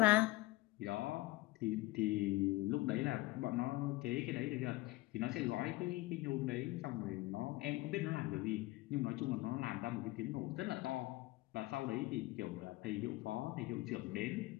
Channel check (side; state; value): right; quieter; 19.9 dB